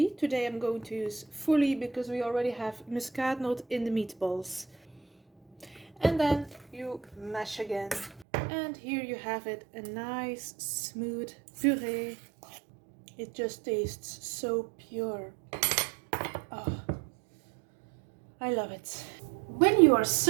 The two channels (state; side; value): drops out; left; at 8.2 s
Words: Today I'm going to use fully because we already have muskatnoot in the meatballs. And then you mash again. And here you have it, a nice smooth puree. It just tastes so pure. Oh, I love it. When you are